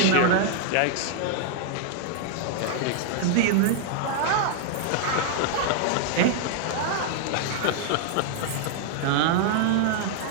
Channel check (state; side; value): different; both; correlation 0.00